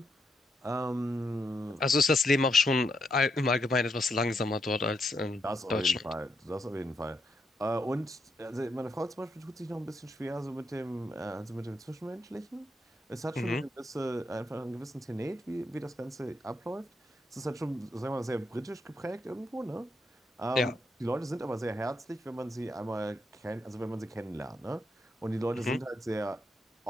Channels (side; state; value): both; normal; correlation 0.80